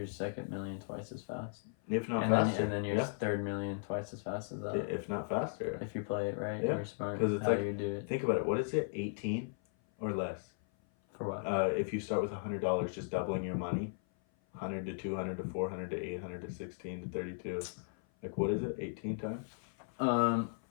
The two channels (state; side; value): silent; right; 54 dB below the other